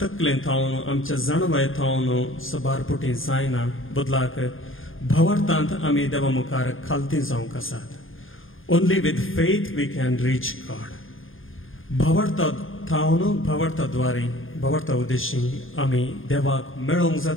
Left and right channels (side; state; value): right; late; 0.59 ms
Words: तकलेंत थावन आमच्या जाणवायेंत थावन सबारपुटी जायना बदलाक भावार्थांत आमी देवा मुखार खालती जावंक आसात only with faith we can reach God भावार्था थावन भावार्था द्वारे भावार्था उद्देशी आमी देवाक मेळोवंक